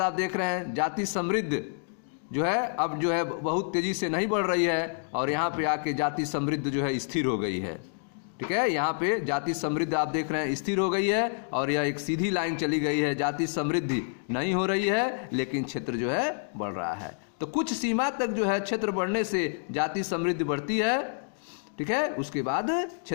आप देख रहे हैं जाति समृद्ध जो है अब जो है बहुत तेजी से नहीं बढ़ रही है और यहाँ पे आके जाति समृद्ध जो है स्थिर हो गई है। ठीक है, यहाँ पे जाति समृद्ध आप देख रहे हैं स्थिर हो गई है और यह एक सीधी लाइन चली गई है। जाति समृद्धि नहीं हो रही है लेकिन क्षेत्र जो है बढ़ रहा है। तो कुछ सीमा तक जो है क्षेत्र बढ़ने से जाति समृद्धि बढ़ती है। ठीक है, उसके बाद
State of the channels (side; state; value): right; silent; digital silence